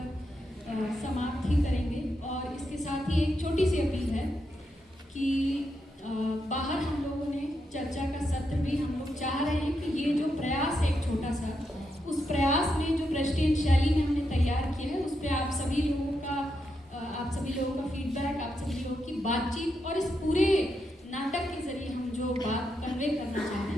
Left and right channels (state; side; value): normal; both; correlation 0.83